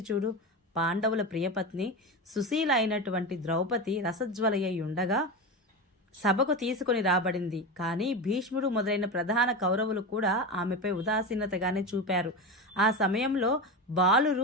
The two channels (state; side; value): normal; both; correlation 0.21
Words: చూడు. పాండవుల ప్రియపత్ని సుశీల అయినటువంటి ద్రౌపది రసజ్వలయ్యి ఉండగా సభకు తీసుకొని రాబడింది. కానీ భీష్ముడు మొదలైన ప్రధాన కౌరవులు కూడా ఆమెపై ఉదాసీనతగానే చూపారు. ఆ సమయంలో